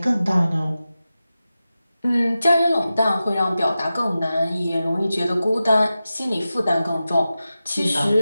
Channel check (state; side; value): inverted; both; correlation -0.93